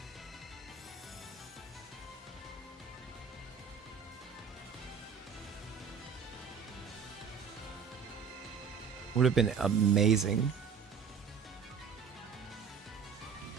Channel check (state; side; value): quieter; left; 6.4 dB